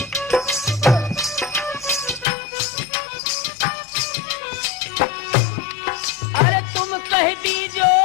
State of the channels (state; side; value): drops out; right; at 2.2 s